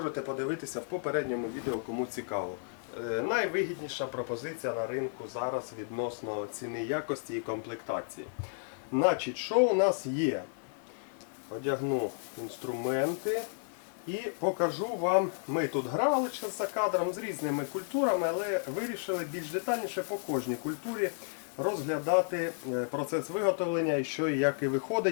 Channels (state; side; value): silent; right; digital silence